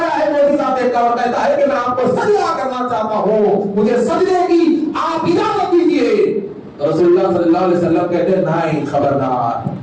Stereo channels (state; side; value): identical; both; correlation 1.00